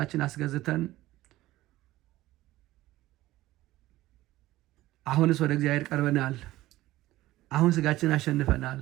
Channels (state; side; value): quieter; left; 16.5 dB